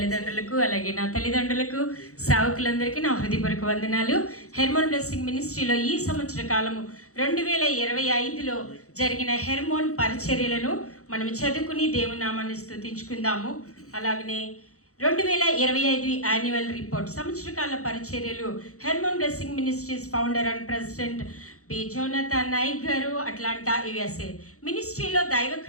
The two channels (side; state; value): right; late; 0.65 ms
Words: అలాగే నా తల్లిదండ్రులకు, సేవకులందరికీ నా హృదయపూర్వక వందనాలు. హెర్మోన్ బ్లెస్సింగ్ మినిస్ట్రీలో ఈ సంవత్సర కాలము 2025లో జరిగిన హెర్మోన్ పరిచర్యలను మనం చదువుకుని దేవుని నామాన్ని స్తుతించుకుందాము. అలాగనే 2025 యాన్యువల్ రిపోర్ట్, సంవత్సరకాల పరిచర్యలు, Hermon blessing ministries founder and president P Jonathan Nayak గారు, అట్లాంటా USA. మినిస్ట్రీలో